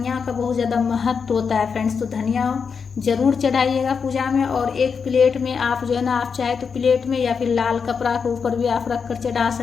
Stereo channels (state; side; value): quieter; right; 5.9 dB